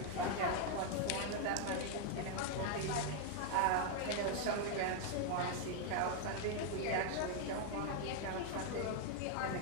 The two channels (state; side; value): different; both; correlation 0.00